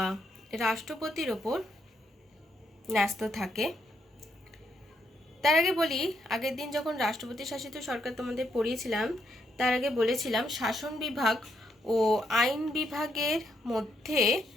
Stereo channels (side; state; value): both; normal; correlation 0.76